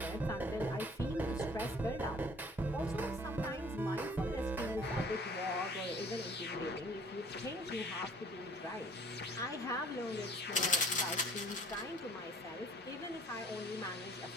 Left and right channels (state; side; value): normal; both; correlation 0.53